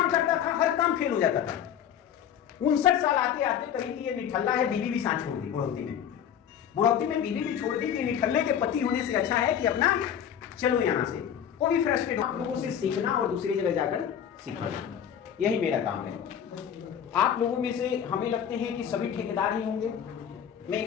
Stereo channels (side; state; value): right; quieter; 9.1 dB